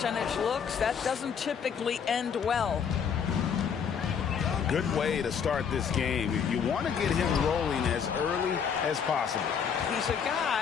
looks, that doesn't typically end well. Good way to start this game. You want to get him rolling as early as possible. He's a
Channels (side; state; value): right; quieter; 7.1 dB